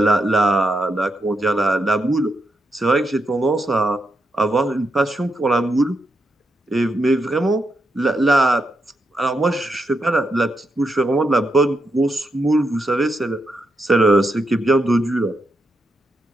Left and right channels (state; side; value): normal; both; correlation 0.83